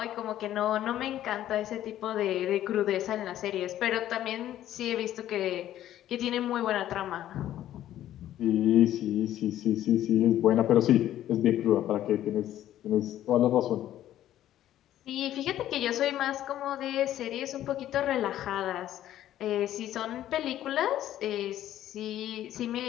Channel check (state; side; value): quieter; right; 12.5 dB